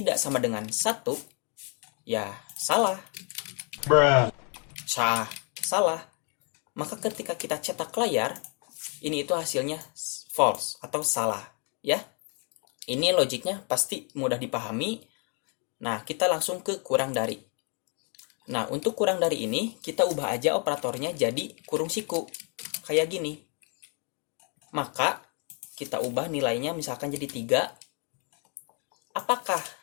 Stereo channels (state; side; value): quieter; right; 38.2 dB